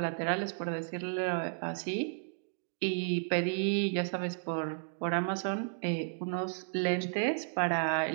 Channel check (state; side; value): silent; left; digital silence